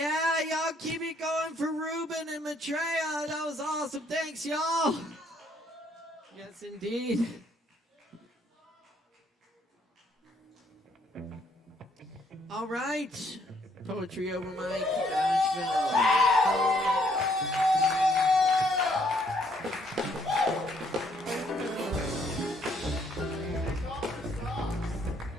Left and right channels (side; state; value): both; normal; correlation 0.68